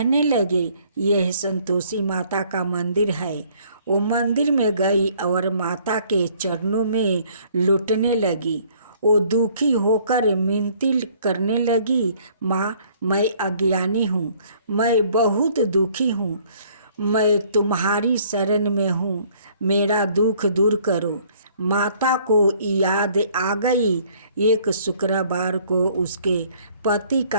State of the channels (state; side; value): inverted; both; correlation -0.60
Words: लगे, यह संतोषी माता का मंदिर है। वो मंदिर में गई और माता के चरणों में लुटने लगी। वो दुखी होकर मिनती करने लगी, माँ मैं अज्ञानी हूँ, मैं बहुत दुखी हूँ, मैं तुम्हारी शरण में हूँ, मेरा दुख दूर करो। माता को याद आ गई। एक शुक्रवार को उसके पति